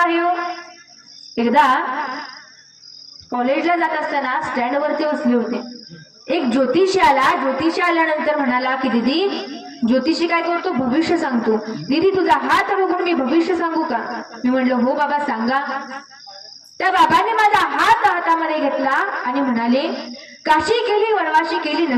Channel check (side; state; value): both; identical; correlation 1.00